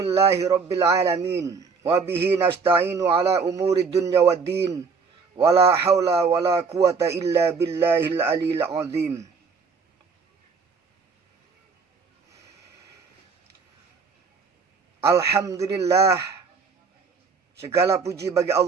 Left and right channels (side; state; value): left; quieter; 5.1 dB